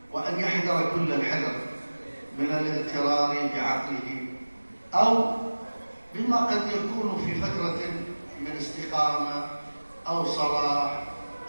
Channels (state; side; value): inverted; both; correlation -1.00